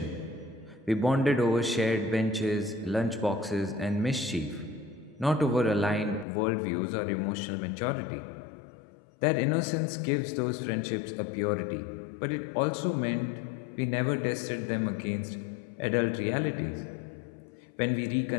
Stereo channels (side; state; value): right; drops out; at 6.2 s